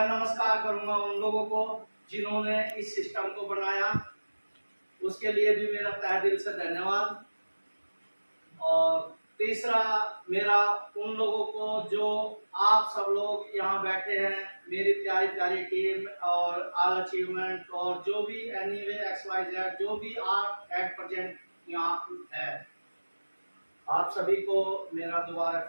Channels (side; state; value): both; inverted; correlation -1.00